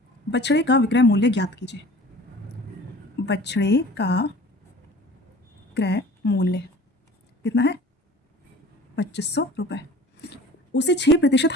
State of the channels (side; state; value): both; normal; correlation 0.44